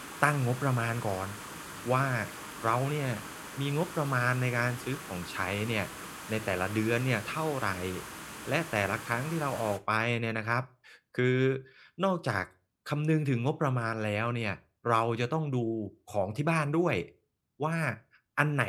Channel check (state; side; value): identical; both; correlation 1.00